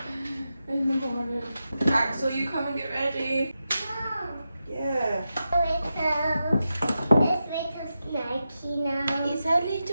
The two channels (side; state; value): both; inverted; correlation -0.89